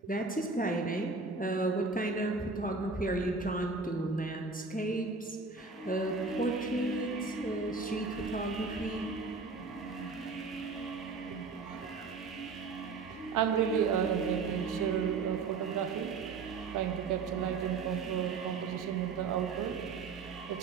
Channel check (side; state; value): left; quieter; 4.3 dB